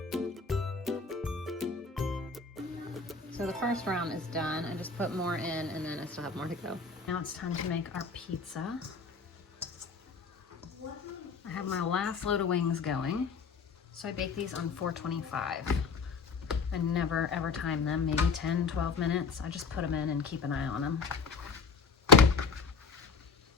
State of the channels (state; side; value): quieter; right; 4.9 dB